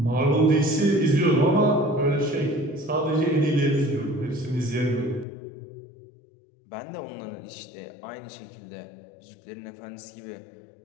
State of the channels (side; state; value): right; drops out; at 5.2 s